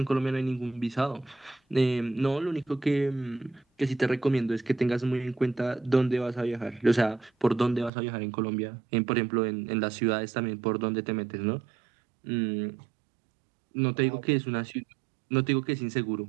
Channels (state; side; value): drops out; left; at 7.9 s